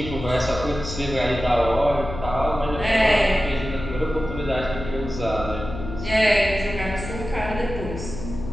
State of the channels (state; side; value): noise; left; hum, 9 dB below the sound